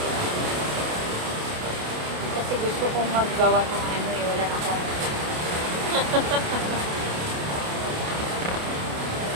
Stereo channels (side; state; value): left; late; 28 ms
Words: Kasi gusto kong maggawa ng ano eh, wala na akong